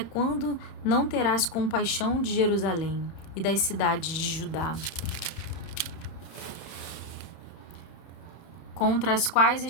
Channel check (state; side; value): late; right; 31 ms